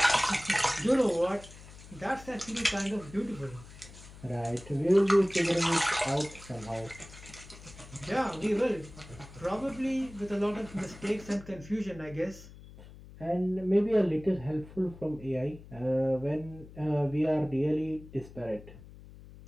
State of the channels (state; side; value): noise; left; hum, 18 dB below the sound